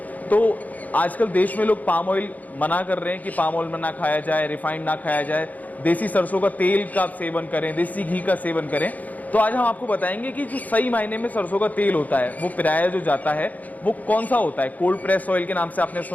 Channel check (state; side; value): late; right; 0.078 ms